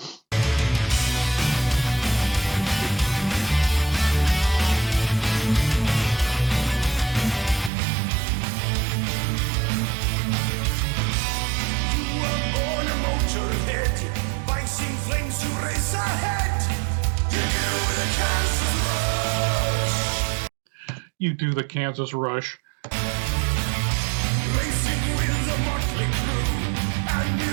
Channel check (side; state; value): left; drops out; at 7.7 s